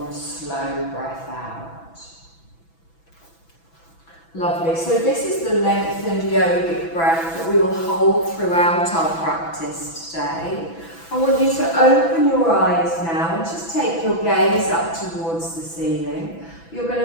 slow breath out. Lovely. So this is the lengthened yogic breath that we will hold throughout our practice today. I want you to open your eyes now and just take your gaze up towards the ceiling. You're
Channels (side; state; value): right; late; 6.0 ms